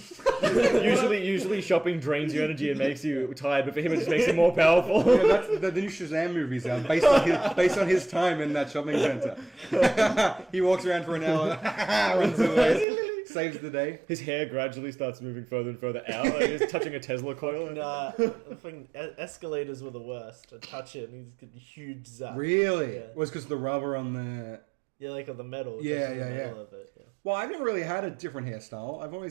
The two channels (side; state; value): left; drops out; at 12.9 s